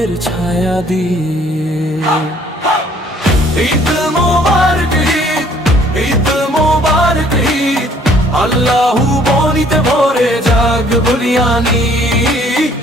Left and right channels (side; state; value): both; normal; correlation 0.59